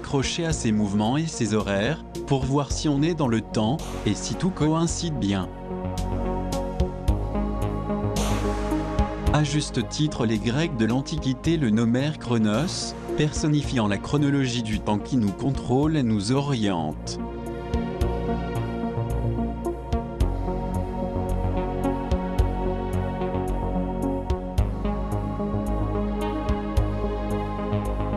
à ces mouvements et ces horaires, pour voir si on est dans le temps, et si tout coïncide bien. À juste titre, les Grecs de l'Antiquité le nommèrent Chronos, personnifiant la chronologie du temps qui nous contrôle et nous oriente.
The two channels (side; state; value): both; identical; correlation 1.00